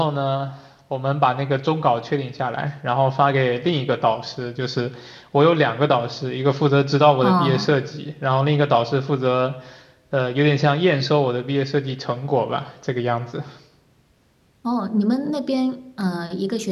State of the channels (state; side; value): identical; both; correlation 1.00